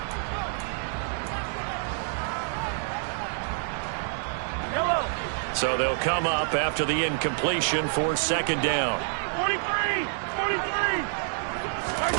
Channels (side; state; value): left; silent; 60 dB below the other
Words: So they'll come up after the incompletion for second down. 43! 43!